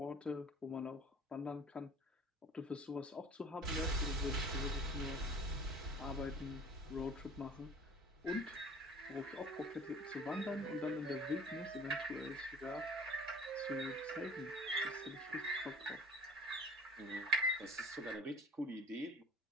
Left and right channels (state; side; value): normal; both; correlation 0.46